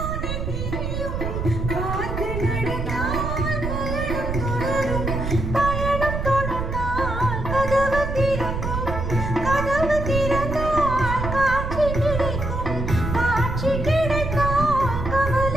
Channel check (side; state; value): right; noise; rumble, 3 dB below the sound